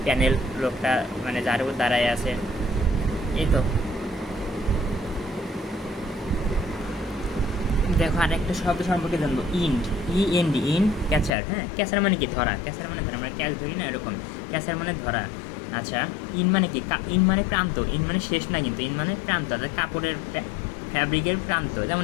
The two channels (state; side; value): drops out; right; at 11.3 s